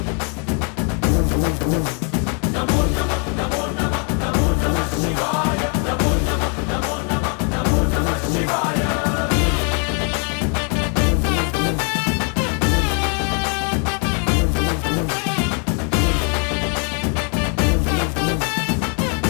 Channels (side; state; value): right; quieter; 38.9 dB